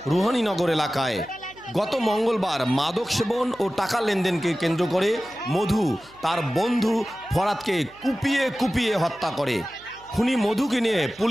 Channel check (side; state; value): right; noise; hum, 26 dB below the sound